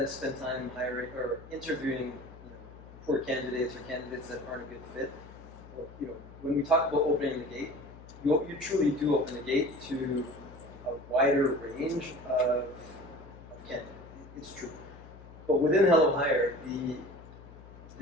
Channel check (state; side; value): noise; left; hum, 18 dB below the sound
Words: spend time hiring or interviewing poor candidates or candidates that aren't a good fit. Well, when we talk about opening the gate, you truly do open the gate to a wider range of candidates. It's true. But within Hellohire,